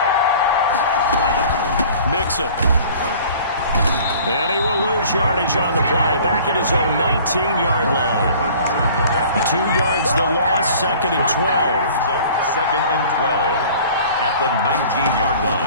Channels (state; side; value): inverted; both; correlation -0.48